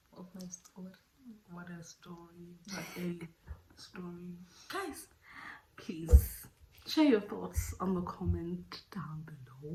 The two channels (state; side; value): identical; both; correlation 1.00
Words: What a story. What a story. Guys, please share your thoughts on the comment down